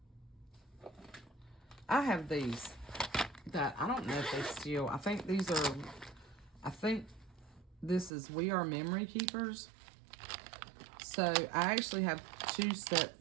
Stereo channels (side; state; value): left; drops out; at 8.1 s